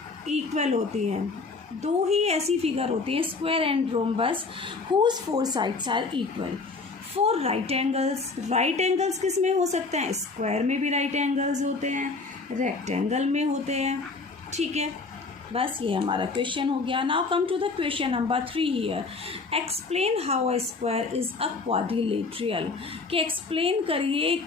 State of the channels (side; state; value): right; quieter; 4.1 dB